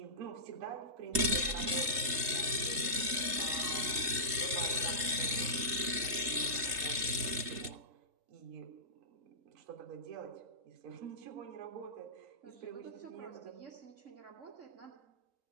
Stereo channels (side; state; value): left; late; 3.8 ms